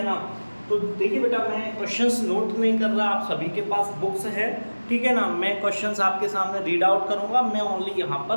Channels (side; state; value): both; inverted; correlation -1.00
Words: ना। तो देखिए बेटा, मैं क्वेश्चंस नोट नहीं कर रहा, आप सभी के पास बुक्स है, ठीक है ना। मैं क्वेश्चंस आपके सामने रीड आउट करूंगा, मैं ओनली यहाँ